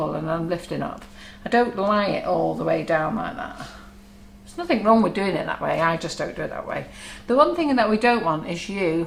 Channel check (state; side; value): identical; both; correlation 1.00